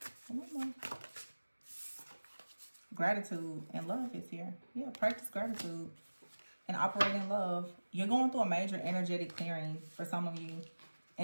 Gratitude and love is here. Yeah, practice gratitude and operate in love. You're going through a major energetic clearing for some of you.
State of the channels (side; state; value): both; inverted; correlation -1.00